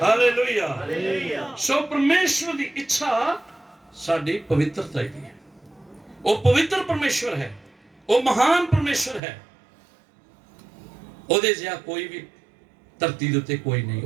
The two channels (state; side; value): drops out; left; at 9.2 s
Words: ਹਾਲੇਲੂਇਆ। ਸੋ ਪਰਮੇਸ਼ਵਰ ਦੀ ਇੱਛਾ ਸਾਡੀ ਪਵਿੱਤਰਤਾ ਦੀ ਹੈ। ਉਹ ਪਵਿੱਤਰ ਪਰਮੇਸ਼ਵਰ ਹੈ, ਉਹ ਮਹਾਨ ਪਰਮੇਸ਼ਵਰ ਹੈ। ਉਹਦੇ ਜਿਹਾ ਕੋਈ ਵੀ ਧਰਤੀ ਦੇ ਉੱਤੇ ਕੋਈ ਨਹੀਂ,